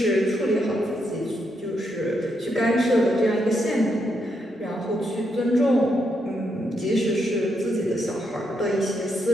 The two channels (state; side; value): normal; both; correlation 0.80